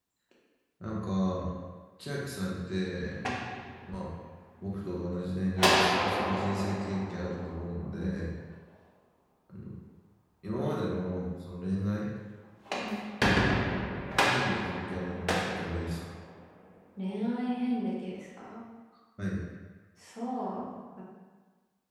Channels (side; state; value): both; identical; correlation 1.00